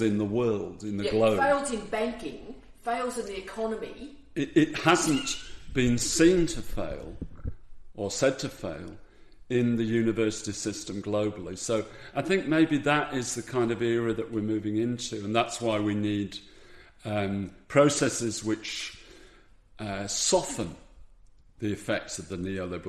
in the world, in the globe... fails in banking, fails in the economy... It hasn't been seen to fail, or said to fail, in the university system globally. So I think maybe that is the kind of era that we're moving into, and that's why we need processes which soften the effects of the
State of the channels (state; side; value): identical; both; correlation 1.00